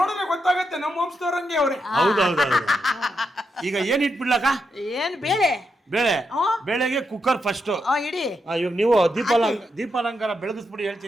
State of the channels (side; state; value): both; normal; correlation 0.83